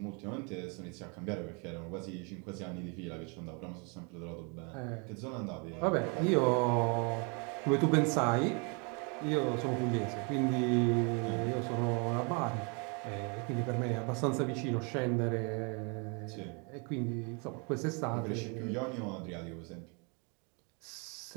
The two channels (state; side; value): quieter; left; 34.2 dB